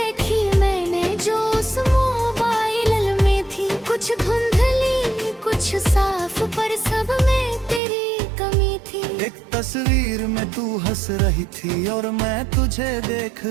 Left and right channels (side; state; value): left; drops out; at 7.8 s